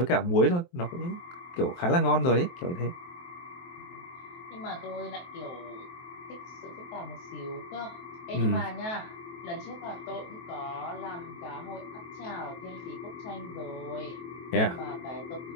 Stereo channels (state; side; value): late; right; 23 ms